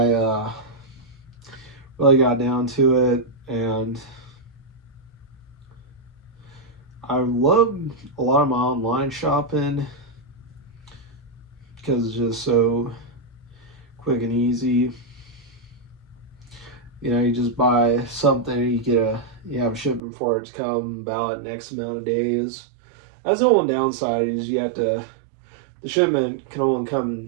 really got down to it, and I love a lot of my online shopping because it's just so quick and easy. You know, you just buy something, you have a shipment for it to come about X amount of days. That's the one downside is the shipment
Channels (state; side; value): drops out; left; at 20.0 s